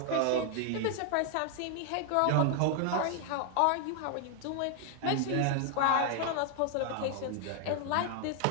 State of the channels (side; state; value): both; different; correlation 0.00